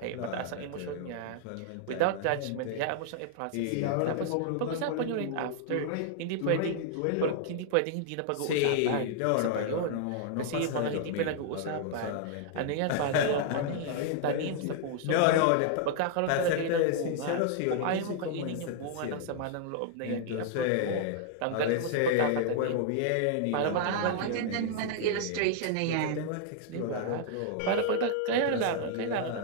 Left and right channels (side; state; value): both; different; correlation -0.01